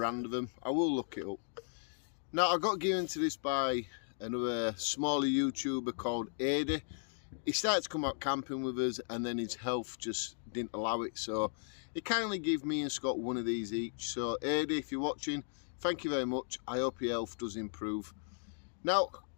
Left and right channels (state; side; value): silent; right; digital silence